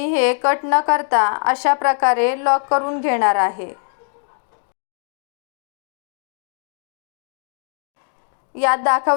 हे कट न करता अशा प्रकारे लॉक करून घेणार आहे. यात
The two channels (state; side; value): silent; right; digital silence